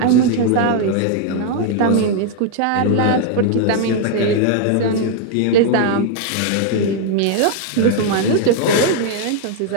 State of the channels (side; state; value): both; different; correlation 0.00